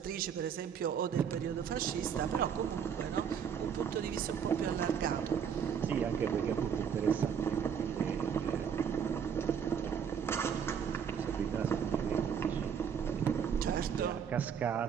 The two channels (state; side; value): quieter; left; 7.6 dB